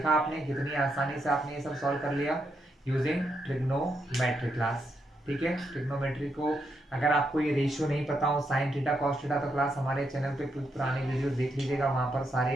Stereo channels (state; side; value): normal; both; correlation 0.80